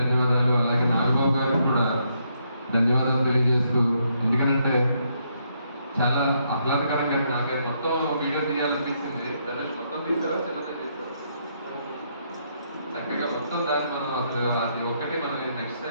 అలాగే నాగబాబు గారికి కూడా ధన్యవాదాలు తెలియజేస్తూ, ఎందుకంటే చాలా ఆహ్లాదకరంగా నాకే మొత్తం వీడియో తీయాలనిపించింది. దాన్ని మొత్తం తీసావా, చిన్నదే తీసావా? చక్కగా మొత్తం దాన్ని మనం అసలు అది ఒక్కటి మనం నెక్స్ట్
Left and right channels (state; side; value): inverted; both; correlation -0.75